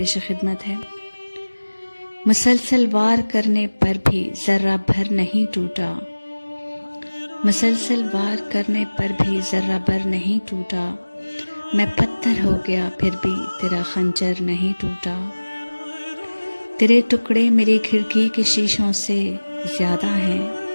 خدمت ہے۔ مسلسل وار کرنے پر بھی ذرہ بھر نہیں ٹوٹا، مسلسل وار کرنے پر بھی ذرہ بھر نہیں ٹوٹا، میں پتھر ہو گیا پھر بھی تیرا خنجر نہیں ٹوٹا، تیرے ٹکڑے میری کھڑکی کے شیشوں سے زیادہ ہیں،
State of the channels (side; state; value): both; inverted; correlation -1.00